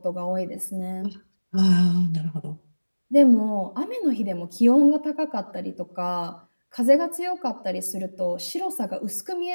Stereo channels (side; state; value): both; inverted; correlation -1.00